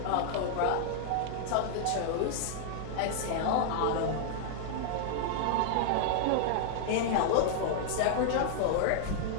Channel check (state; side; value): different; both; correlation -0.01